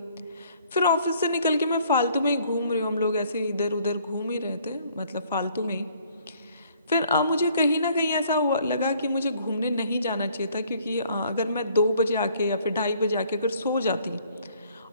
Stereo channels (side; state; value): both; inverted; correlation -0.61